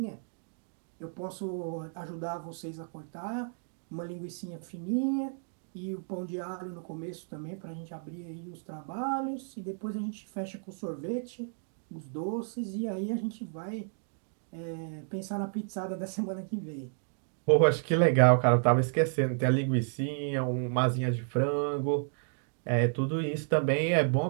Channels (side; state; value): left; silent; digital silence